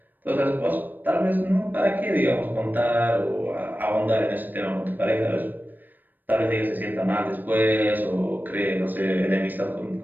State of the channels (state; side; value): late; left; 0.090 ms